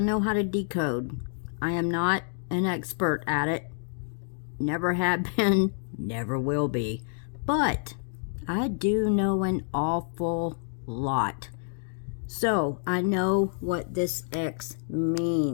how to decode. I am not an expert at it, never have been, never will be, but I do know an awful lot. So, I know what this X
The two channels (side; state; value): right; silent; digital silence